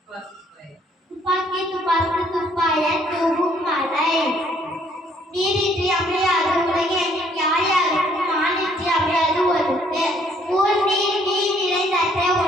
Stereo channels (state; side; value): normal; both; correlation 0.64